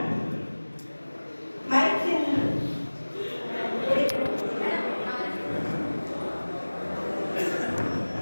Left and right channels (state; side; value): inverted; both; correlation -1.00